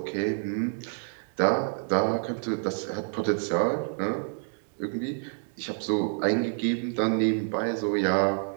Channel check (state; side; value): silent; left; 59 dB below the other